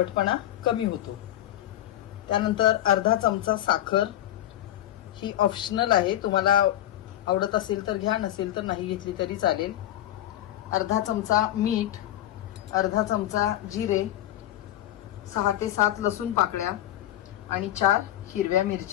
कमी होतो। त्यानंतर अर्धा चमचा साखर, ही ऑप्शनल आहे, तुम्हाला आवडत असेल तर घ्या, नसेल तर नाही घेतली तरी चालेल। अर्धा चमचा मीठ, अर्धा चमचा जिरे, 6 ते 7 लसूण पाकळ्या आणि 4 हिरव्या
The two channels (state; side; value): quieter; right; 13.0 dB